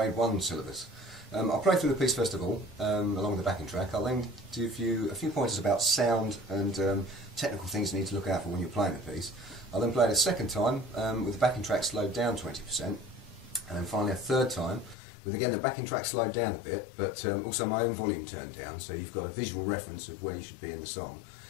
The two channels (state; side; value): drops out; right; at 15.0 s